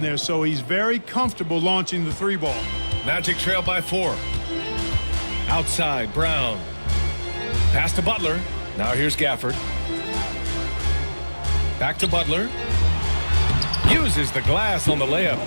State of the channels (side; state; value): both; inverted; correlation -1.00